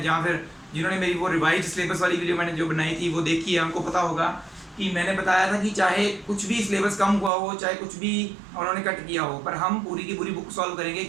जहाँ फिर जिन्होंने मेरी वो रिवाइज सिलेबस वाली वीडियो मैंने जो बनाई थी वो देखी है, उनको पता होगा कि मैंने बताया था कि चाहे कुछ भी सिलेबस कम हुआ हो, चाहे कुछ भी उन्होंने कट किया हो, पर हम पूरी की पूरी बुक सॉल्व करेंगे,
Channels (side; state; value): left; drops out; at 7.3 s